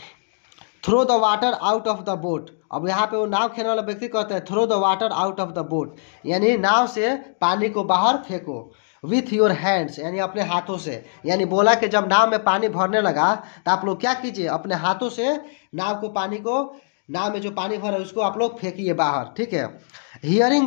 Throw the water out of the boat, अब यहाँ पे वो नाव खेलने वाला व्यक्ति कहते हैं throw the water out of the boat, यानी नाव से पानी को बाहर फेंको। विथ योर हैंड्स, यानी अपने हाथों से, यानी बोला कि जब नाव में पानी भरने लगा तो आप लोग क्या कीजिए, अपने हाथों से नाव को, पानी को, नाव में जो पानी भरा है उसको आप लोग फेंकिए बाहर, ठीक है।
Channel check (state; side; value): silent; right; digital silence